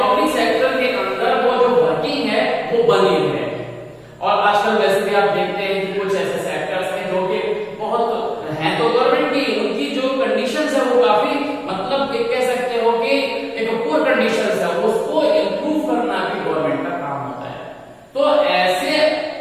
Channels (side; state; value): both; identical; correlation 1.00